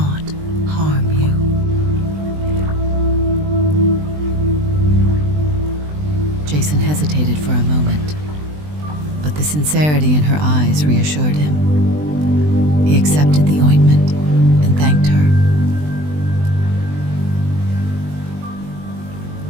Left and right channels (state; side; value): late; left; 20 ms